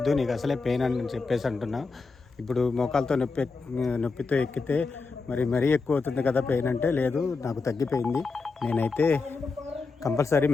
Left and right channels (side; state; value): right; quieter; 4.3 dB